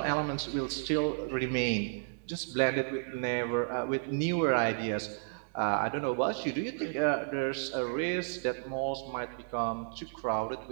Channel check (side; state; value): left; silent; digital silence